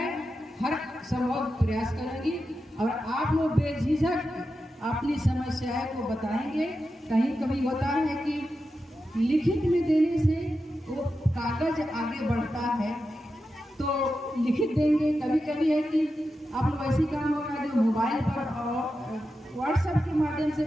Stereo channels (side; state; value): both; normal; correlation 0.90